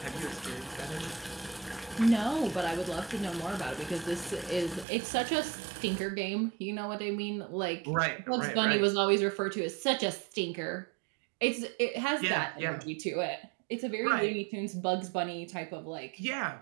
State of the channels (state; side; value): drops out; left; at 4.9 s